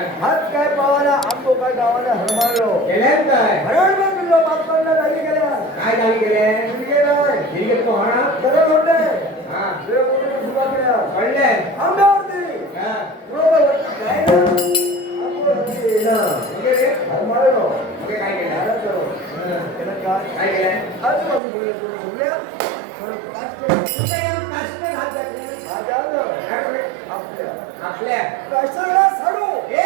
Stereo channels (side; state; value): left; drops out; at 21.4 s